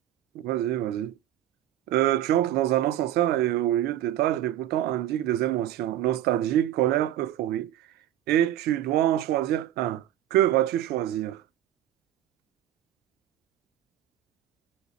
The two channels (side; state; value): left; quieter; 12.6 dB